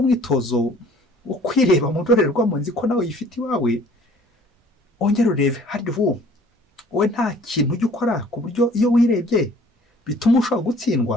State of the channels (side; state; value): both; normal; correlation 0.53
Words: umwitozo wo kwireba mu ndorerwamo, nzi ko nawe yifite iwawe, ongera urebe harya wowe nta kintu ujya ukora ku buryo iyo wirebye bituma ushobora